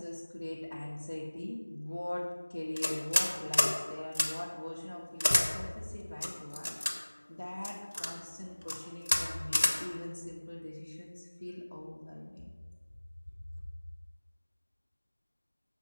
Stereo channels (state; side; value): inverted; both; correlation -1.00